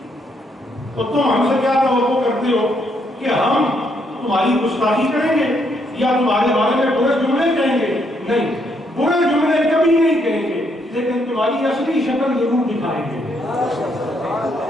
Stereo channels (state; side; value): normal; both; correlation 0.73